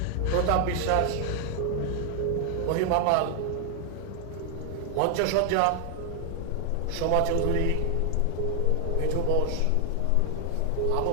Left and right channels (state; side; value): different; both; correlation 0.00